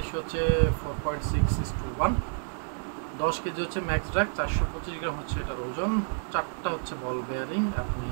হচ্ছে 4.6:1। 10 কেজি হচ্ছে ম্যাক্স ড্রাগ, 425 গ্রাম হচ্ছে এটার ওজন। 4টা হচ্ছে বল বেয়ারিং। আপনি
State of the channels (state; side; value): silent; left; 58 dB below the other